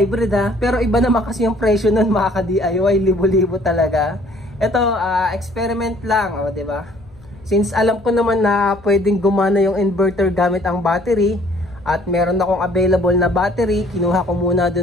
ha? Pero iba naman kasi yung presyo nun, mga ka-DIY. Libo-libo talaga. Ito, experiment lang, o, diba? Since alam ko naman na pwedeng gumana yung inverter gamit ang battery, at meron akong available na battery, kinuha ko muna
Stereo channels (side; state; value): left; noise; hum, 25 dB below the sound